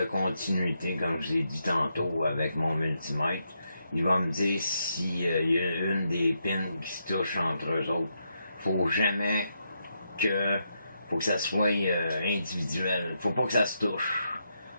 continuité, comme je l'ai dit tantôt, avec mon multimètre. Il va me dire s'il y a une des pins qui se touche entre eux autres. Faut jamais que... Faut que ça soit individuel. Faut pas que ça se touche.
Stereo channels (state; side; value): inverted; both; correlation -0.81